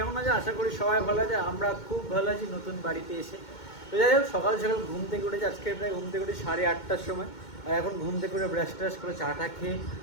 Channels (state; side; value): late; right; 2.2 ms